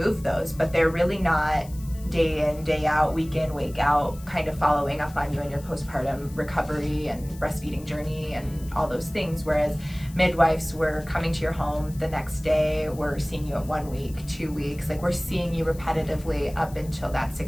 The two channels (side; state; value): left; noise; hiss, 21 dB below the sound